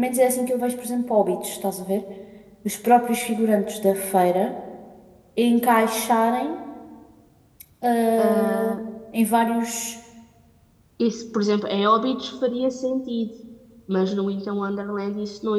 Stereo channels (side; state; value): both; identical; correlation 1.00